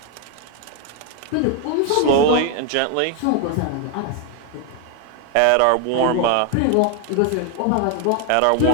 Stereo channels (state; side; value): different; both; correlation 0.01